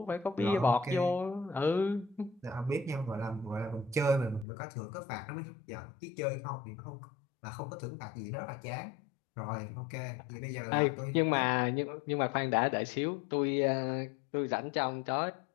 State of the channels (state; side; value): drops out; right; at 4.5 s